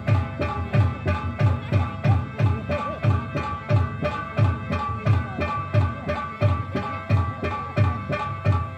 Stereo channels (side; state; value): both; identical; correlation 1.00